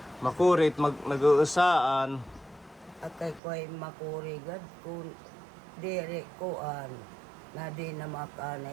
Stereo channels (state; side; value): drops out; left; at 3.4 s